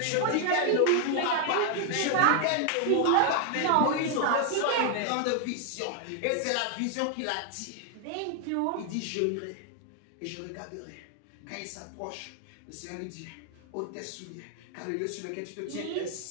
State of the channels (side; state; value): both; different; correlation 0.00